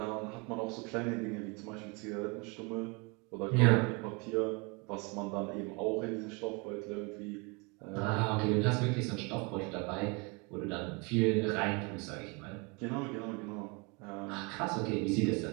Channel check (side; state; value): left; quieter; 30.0 dB